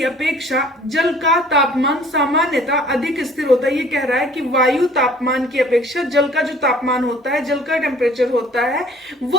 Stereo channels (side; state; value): both; normal; correlation 0.53